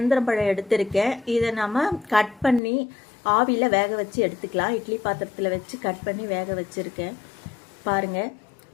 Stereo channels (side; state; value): right; drops out; at 2.6 s